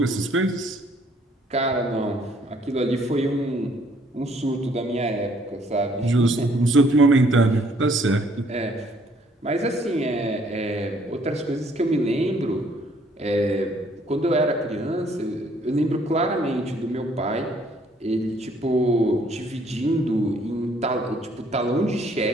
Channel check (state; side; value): normal; both; correlation 0.63